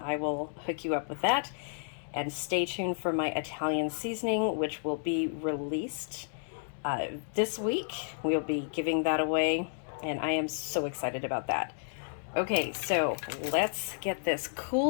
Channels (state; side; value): silent; right; digital silence